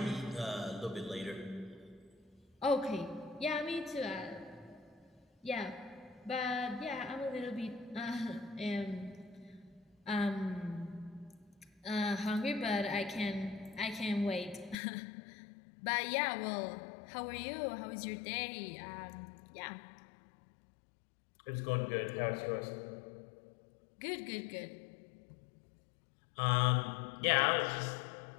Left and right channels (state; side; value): drops out; right; at 14.8 s